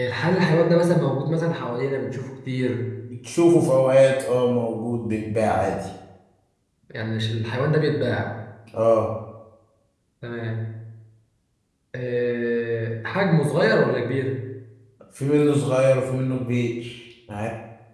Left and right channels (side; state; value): both; identical; correlation 1.00